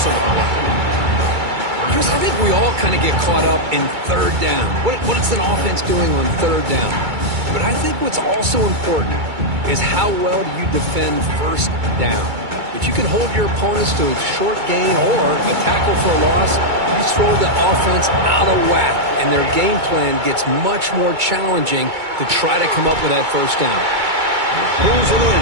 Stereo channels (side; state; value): left; late; 2.2 ms